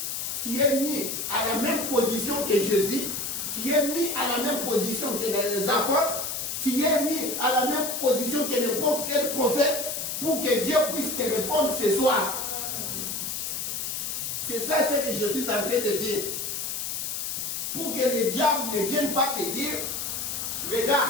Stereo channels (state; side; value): noise; left; hiss, 3 dB below the sound